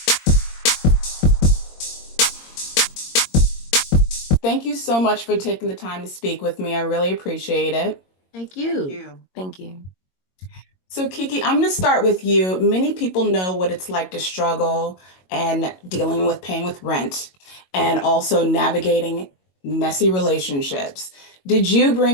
Thank you so much for taking the time to speak with me. I really appreciate it. Thank Thank you. you. Thank you. So, Kiki, I'm going to start with you. Many people know what it's like to struggle and dealing with paying with rent and also navigating messy relationships. Did you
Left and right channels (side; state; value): right; late; 22 ms